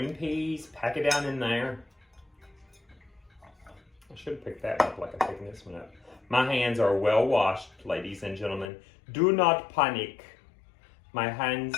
peas, pack it down in there. I should have picked that up like I'm picking this one up. My hands are well washed, ladies and gentlemen. Do not panic. My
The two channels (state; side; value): drops out; right; at 8.7 s